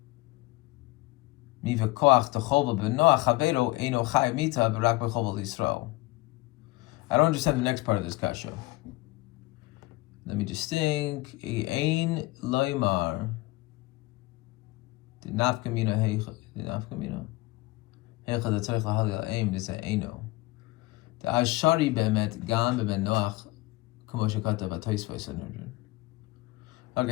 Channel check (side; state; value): right; quieter; 20.3 dB